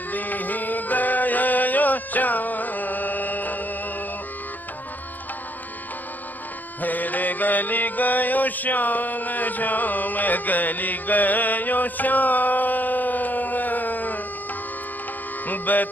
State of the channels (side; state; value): right; late; 0.084 ms